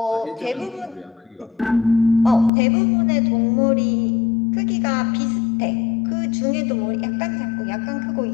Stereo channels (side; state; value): right; drops out; at 2.5 s